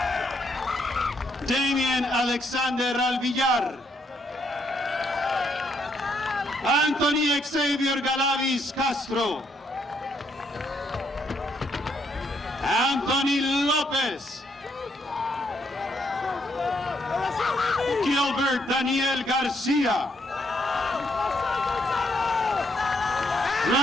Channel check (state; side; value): normal; both; correlation 0.74